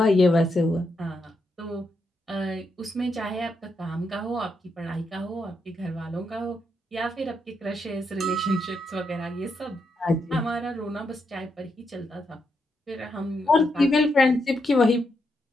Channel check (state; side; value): normal; both; correlation 0.81